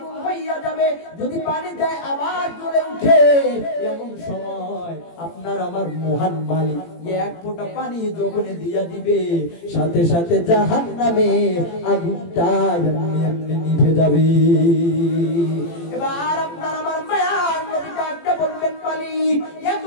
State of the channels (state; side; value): late; right; 18 ms